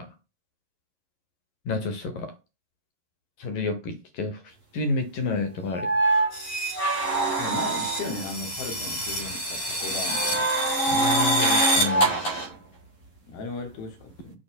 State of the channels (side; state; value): right; late; 11 ms